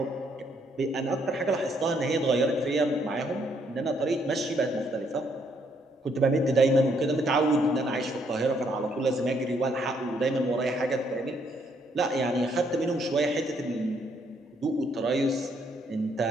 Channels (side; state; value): both; normal; correlation 0.70